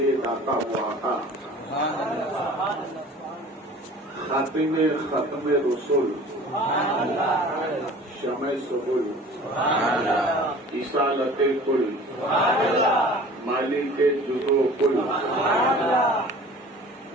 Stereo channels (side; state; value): both; normal; correlation 0.44